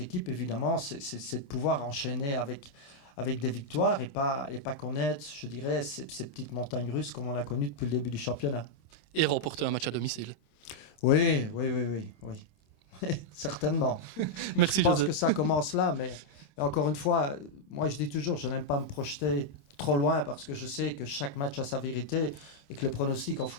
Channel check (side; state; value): right; late; 26 ms